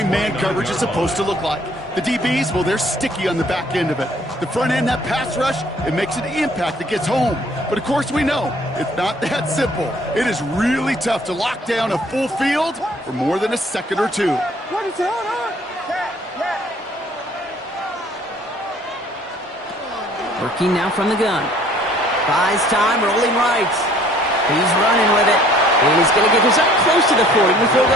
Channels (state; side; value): normal; both; correlation 0.57